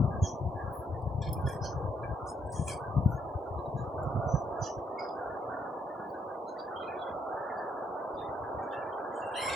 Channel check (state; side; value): normal; both; correlation 0.73